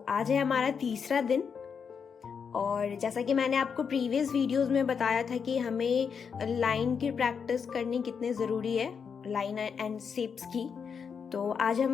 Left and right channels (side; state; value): right; quieter; 6.4 dB